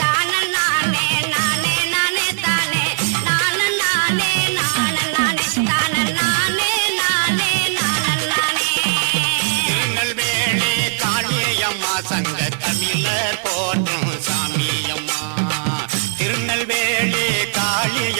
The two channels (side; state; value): left; silent; 60 dB below the other